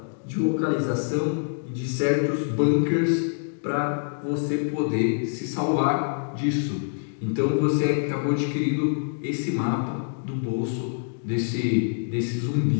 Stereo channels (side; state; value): right; silent; digital silence